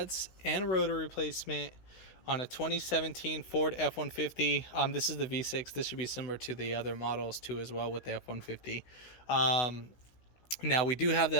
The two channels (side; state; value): right; late; 16 ms